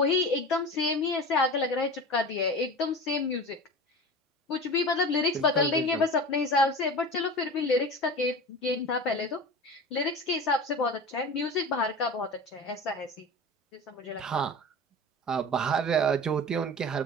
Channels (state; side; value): normal; both; correlation 0.33